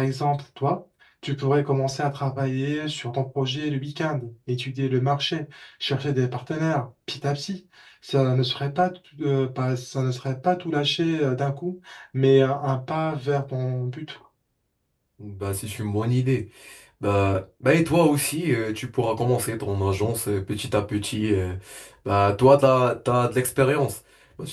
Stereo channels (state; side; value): identical; both; correlation 1.00